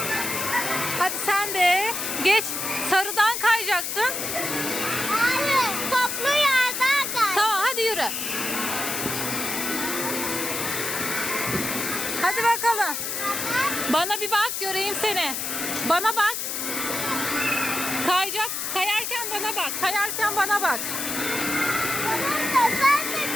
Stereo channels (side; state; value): left; noise; hiss, 3 dB below the sound